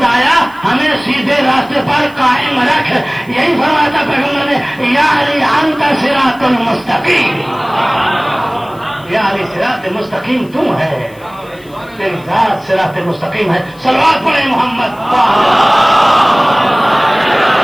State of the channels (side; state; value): left; noise; hiss, 28 dB below the sound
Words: ہمیں سیدھے راستے پر قائم رکھ. یہی فرمایا تھا پیغمبر نے، یا علی انت صراط المستقیم، یا علی صراط مستقیم تم ہے، تیری ذات صراط مستقیم ہے. صلوات پڑھیں محمد.